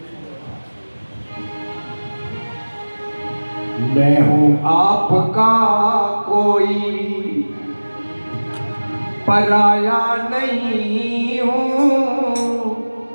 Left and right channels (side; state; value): both; inverted; correlation -1.00